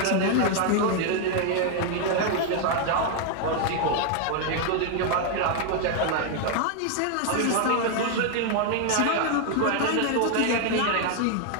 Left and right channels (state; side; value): different; both; correlation 0.00